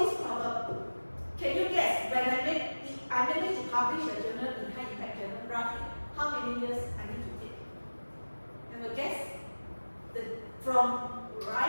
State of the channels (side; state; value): both; inverted; correlation -1.00